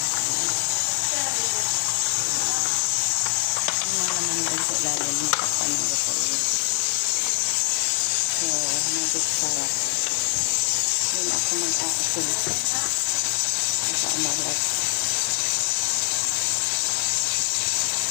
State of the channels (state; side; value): silent; right; 61 dB below the other